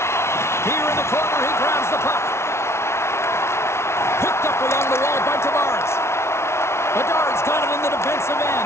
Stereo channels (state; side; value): late; right; 0.13 ms